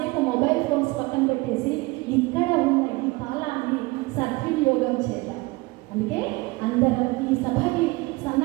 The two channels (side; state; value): left; quieter; 23.5 dB